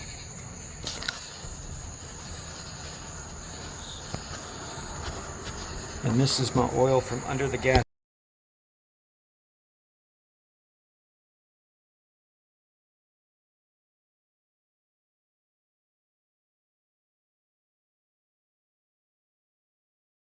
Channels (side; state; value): both; identical; correlation 1.00